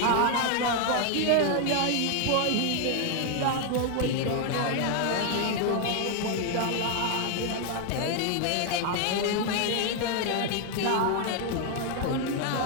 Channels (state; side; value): different; both; correlation 0.01